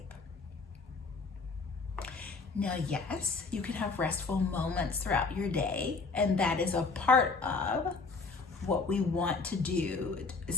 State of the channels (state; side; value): quieter; right; 4.2 dB